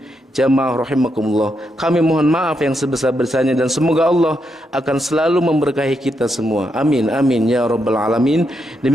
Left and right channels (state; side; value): normal; both; correlation 0.81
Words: jamaah rahimakumullah, kami mohon maaf yang sebesar-besarnya, dan semoga Allah akan selalu memberkahi kita semua. Amin amin ya rabbal alamin.